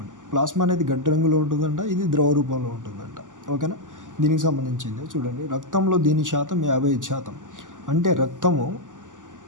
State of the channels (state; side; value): late; left; 0.87 ms